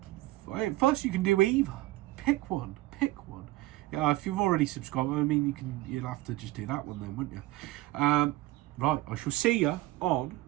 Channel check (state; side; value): quieter; left; 18.2 dB